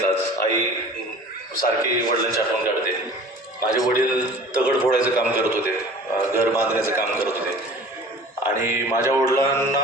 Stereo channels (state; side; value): normal; both; correlation 0.44